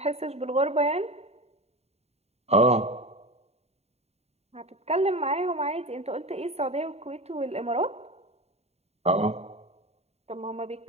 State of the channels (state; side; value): late; left; 0.30 ms